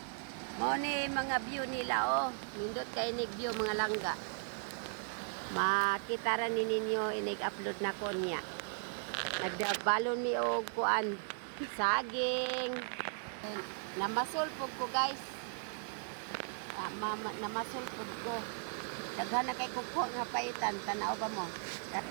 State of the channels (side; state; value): left; silent; 53 dB below the other